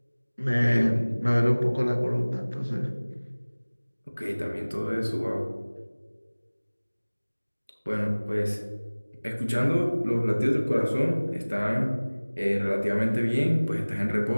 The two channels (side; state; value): both; inverted; correlation -1.00